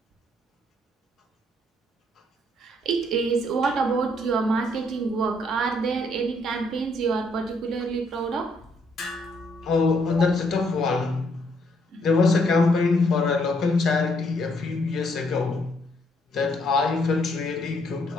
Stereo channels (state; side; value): normal; both; correlation 0.70